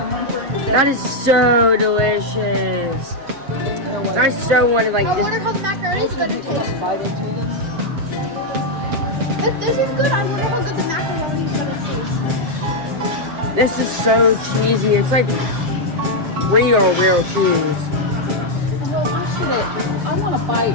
That is so delicious. I so wanted like I wonder this. how the macaroni is going to taste. If this is good, I wonder how good the macaroni is going to taste. This is so cheesy. It's like real cheese. I want a bite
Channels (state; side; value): late; left; 7.4 ms